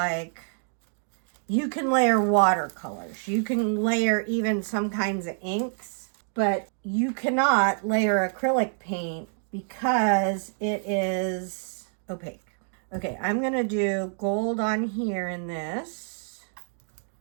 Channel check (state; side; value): silent; left; digital silence